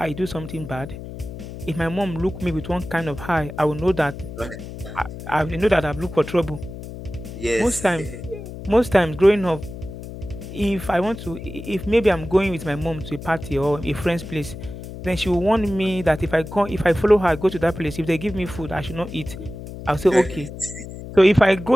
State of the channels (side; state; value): left; noise; hum, 11 dB below the sound